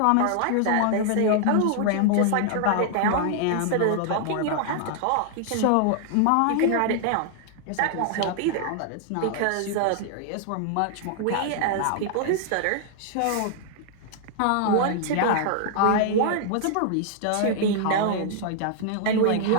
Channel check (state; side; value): different; both; correlation -0.01